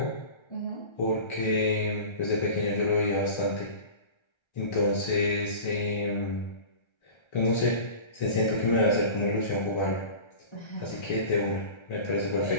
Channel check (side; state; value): right; late; 1.3 ms